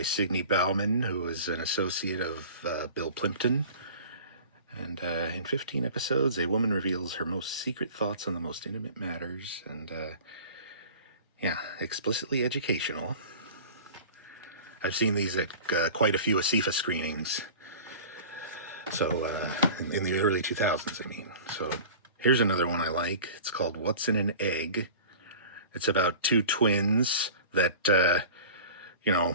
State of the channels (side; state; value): both; inverted; correlation -0.41